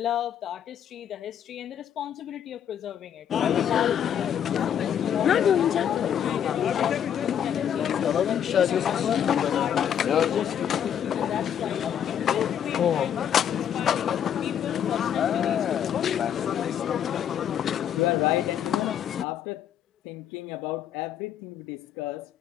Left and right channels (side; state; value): right; quieter; 9.3 dB